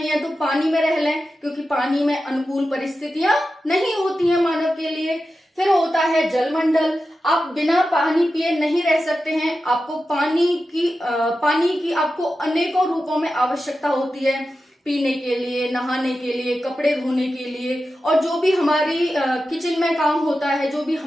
है तो पानी में रह लें, क्योंकि पानी में अनुकूल परिस्थितियां नहीं होती हैं मानव के लिए। फिर होता है जलमंडल। आप बिना पानी पिए नहीं रह सकते हैं। आपको पानी की आपको अनेकों रूपों में आवश्यकता होती है, पीने के लिए, नहाने के लिए, कपड़े धोने के लिए, और जो भी हमारी किचन में काम होता है, जो भी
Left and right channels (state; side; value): normal; both; correlation 0.92